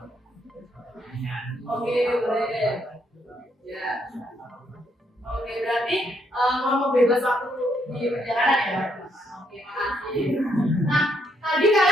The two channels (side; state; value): both; normal; correlation 0.74